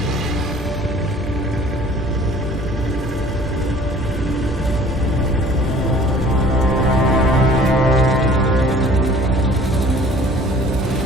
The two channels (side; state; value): both; normal; correlation 0.51